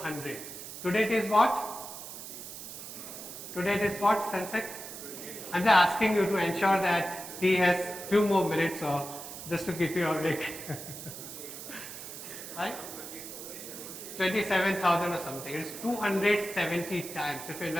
Today it is what? Today it is what, Sensex? I'm just asking you to ensure that he has few more minutes, or just to keep you awake. Right? 27,000 or something. It's 270 times. If you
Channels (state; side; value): noise; right; hiss, 11 dB below the sound